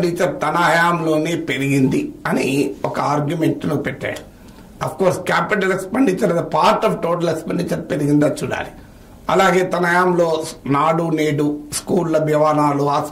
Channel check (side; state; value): both; identical; correlation 1.00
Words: తన హయాంలోనే పెరిగింది అని ఒక ఆర్గ్యుమెంట్ ను పెట్టాడు. Of course capital expenditure part of total expenditure పెరిగిందా చూడాలి. అలాగే తన హయాంలో నాడు నేడు స్కూళ్ల భవనాలు,